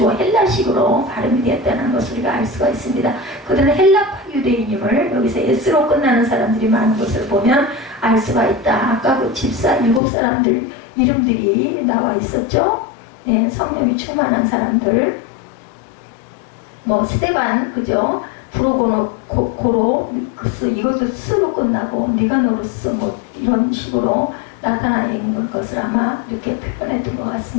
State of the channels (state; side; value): drops out; right; at 10.0 s